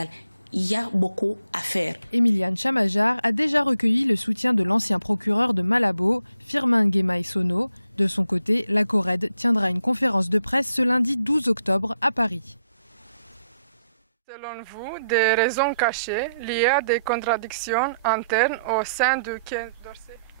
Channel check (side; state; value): both; inverted; correlation -0.77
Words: il y a beaucoup à faire. Emiliane Chamajar a déjà recueilli le soutien de l'ancien procureur de Malabo, Firmin Guémaï Sono. De son côté, la CORED tiendra une conférence de presse ce lundi 12 octobre à Paris. Selon vous, des raisons cachées liées à des contradictions internes au sein du Quai d'Orsay?